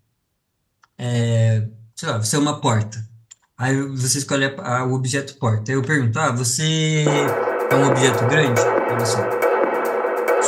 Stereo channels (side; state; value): both; identical; correlation 1.00